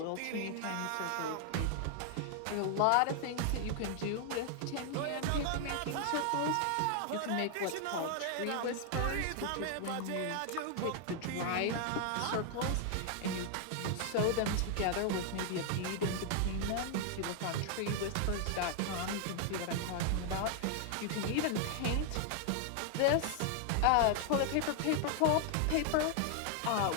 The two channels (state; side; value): different; both; correlation 0.00